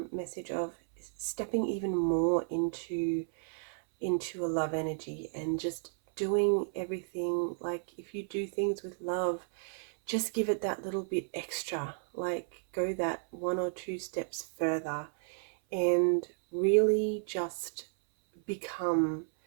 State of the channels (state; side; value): silent; left; 56 dB below the other